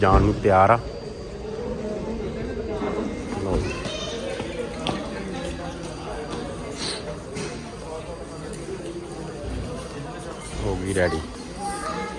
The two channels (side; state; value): both; identical; correlation 1.00